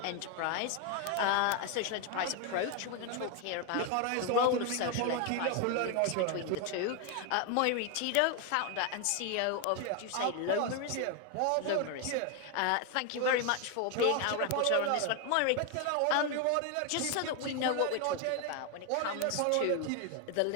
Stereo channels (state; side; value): different; both; correlation 0.01